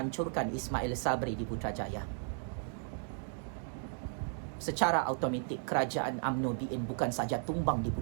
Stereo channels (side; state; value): left; silent; 54 dB below the other